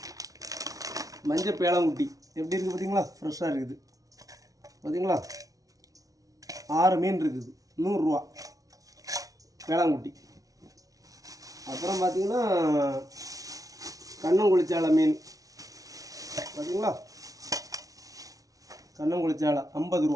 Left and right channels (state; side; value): late; left; 0.18 ms